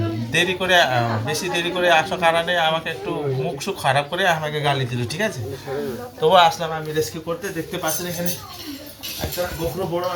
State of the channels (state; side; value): identical; both; correlation 1.00